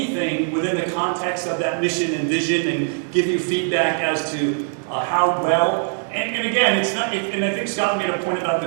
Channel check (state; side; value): silent; left; 59 dB below the other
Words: within the context of that mission and vision and give you feedback as to how well. And again, it's not, and I think Scott made a point about